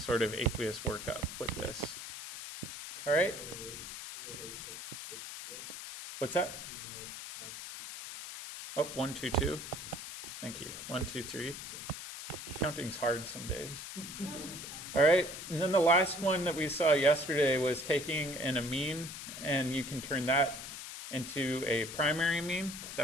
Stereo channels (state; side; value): noise; left; hiss, 9 dB below the sound